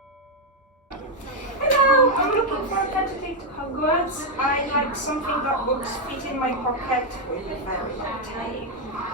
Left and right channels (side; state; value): both; normal; correlation 0.02